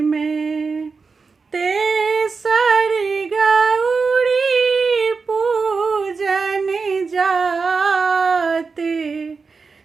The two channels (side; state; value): left; quieter; 4.7 dB